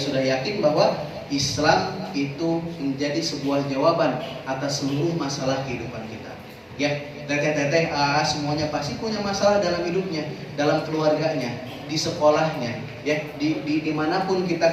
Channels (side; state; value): both; identical; correlation 1.00